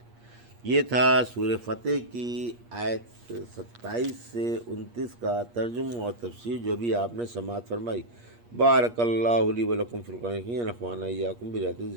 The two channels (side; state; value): left; late; 8.5 ms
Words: یہ تھا سورہ فتح کی آیت 27 سے 29 کا ترجمہ اور تفسیر جو بھی آپ نے سماعت فرمائی۔ بارک اللہ لی و لکم فی القرآن الحکیم، ونفعنی وایاکم بآیات